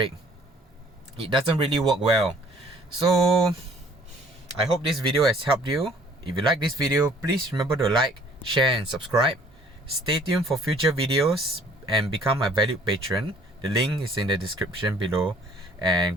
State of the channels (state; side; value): normal; both; correlation 0.56